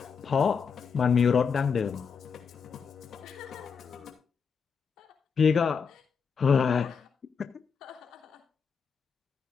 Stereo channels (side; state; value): right; quieter; 6.0 dB